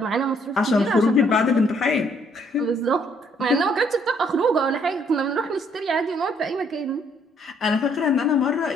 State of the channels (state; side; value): normal; both; correlation 0.66